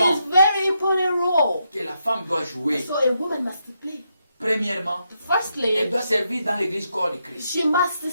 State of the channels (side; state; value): both; inverted; correlation -0.81